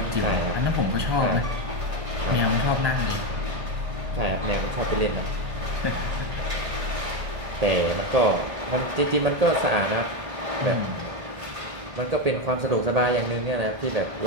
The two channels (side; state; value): left; late; 1.5 ms